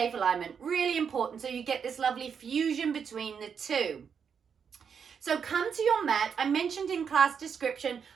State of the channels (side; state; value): left; quieter; 6.8 dB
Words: alignment, really important, so you get this lovely fusion between the two. So come to your mat. I mentioned in class description,